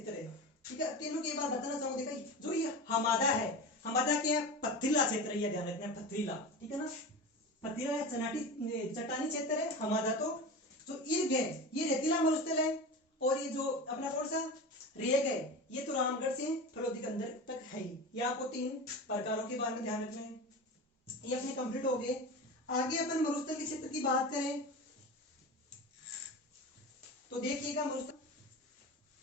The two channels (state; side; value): normal; both; correlation 0.28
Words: है, ठीक है। तीनों की एक बार बताना चाहूंगा, देखा जो ये हमादा है, हमादा क्या है, पथरीला क्षेत्र, यह ध्यान रखना है, पथरीला, ठीक है ना, पथरीला या चट्टानी क्षेत्र है हमादा। तो जो इर्ग है ये रेतीला मरुस्थल है, और ये जो अपना कौन सा रेग है, ये तो रामगढ़ से फलोदी के अंदर तक है ही। ये आपको 3 प्रकारों के बारे में ध्यान रखना है। ये अपने कंप्लीट हो गए। आगे अपन मरुस्थल के क्षेत्र की बात करें तो देखिएगा मरुस्थल